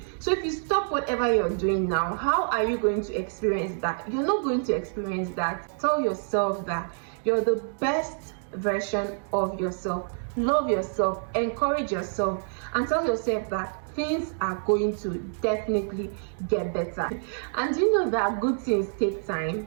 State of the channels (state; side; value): silent; left; digital silence